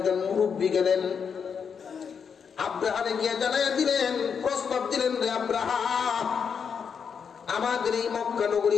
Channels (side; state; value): right; quieter; 6.6 dB